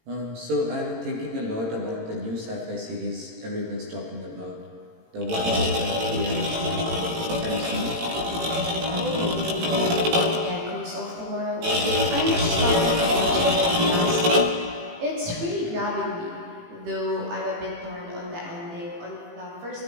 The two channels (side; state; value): left; late; 18 ms